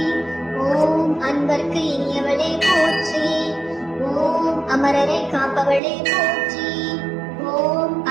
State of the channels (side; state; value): left; drops out; at 5.8 s